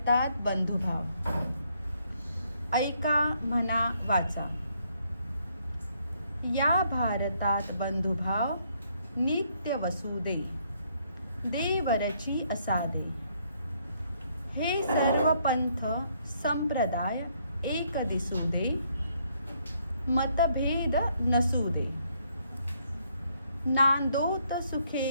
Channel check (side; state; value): both; inverted; correlation -0.71